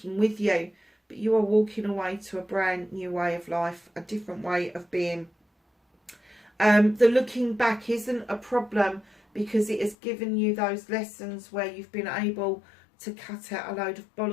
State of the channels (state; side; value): drops out; right; at 10.0 s